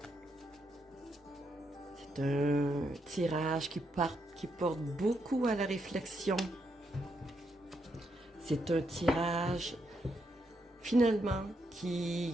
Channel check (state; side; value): normal; both; correlation 0.79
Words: C'est un tirage qui porte beaucoup à la réflexion. C'est un tirage, finalement,